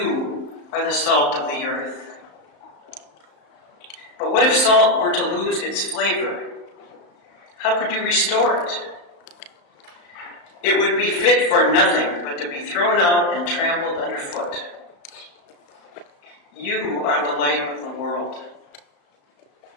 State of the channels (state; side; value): late; right; 35 ms